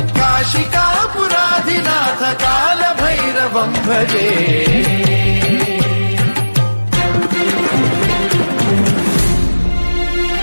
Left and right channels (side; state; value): both; inverted; correlation -1.00